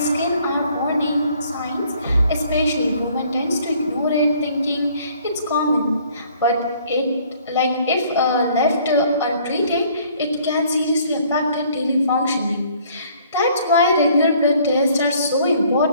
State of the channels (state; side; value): inverted; both; correlation -0.59